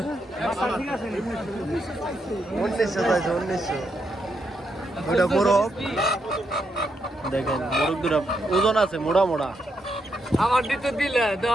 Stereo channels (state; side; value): normal; both; correlation 0.80